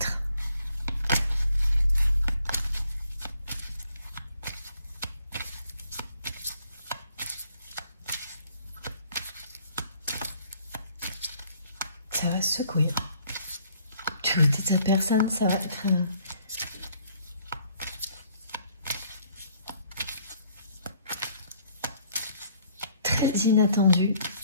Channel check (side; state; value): both; inverted; correlation -0.63